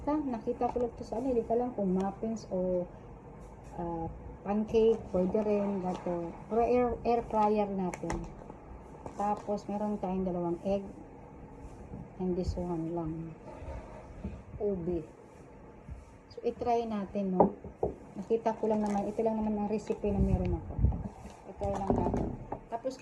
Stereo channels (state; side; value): identical; both; correlation 1.00